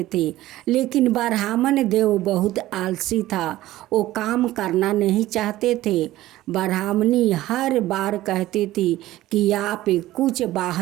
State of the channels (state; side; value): quieter; left; 15.8 dB